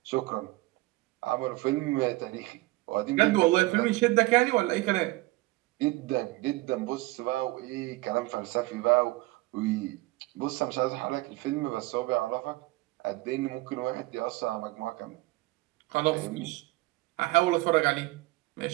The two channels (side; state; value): left; quieter; 20.6 dB